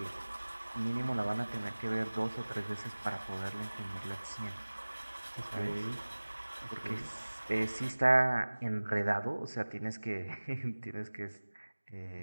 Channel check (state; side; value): inverted; both; correlation -1.00